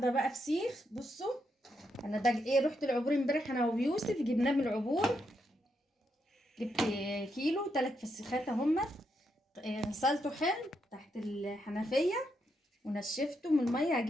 بقى فسيخ. بصوا انا ده ايه، رحت العبور امبارح انا ويوسف، جبناه من العبور. جبت كيلو 3 فسيخات اهم. غسلته حلو تحت الحنفيه ونشفته من الميه.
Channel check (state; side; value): normal; both; correlation 0.81